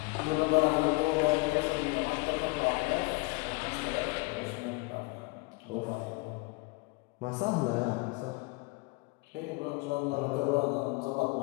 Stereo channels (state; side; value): quieter; right; 26.8 dB